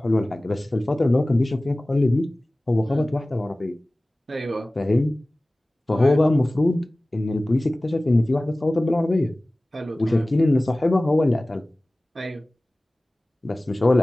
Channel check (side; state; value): both; normal; correlation 0.98